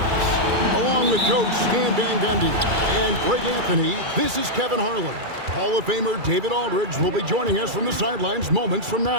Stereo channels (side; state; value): left; late; 2.3 ms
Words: Along with Coach Stan Van Gundy and Greg Anthony, this is Kevin Harlan. Hall of Famer David Aldridge will be joining us from the sidelines moments from